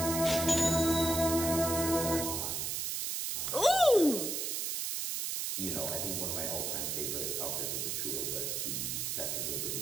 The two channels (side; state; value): right; noise; hiss, 1 dB below the sound